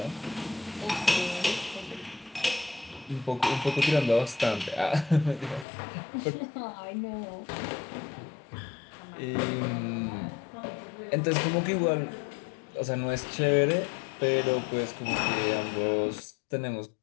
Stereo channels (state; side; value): drops out; right; at 5.7 s